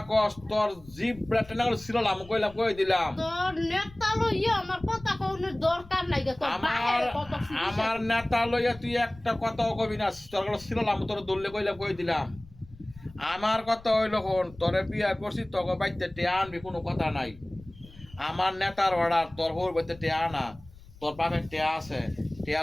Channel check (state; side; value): noise; left; rumble, 21 dB below the sound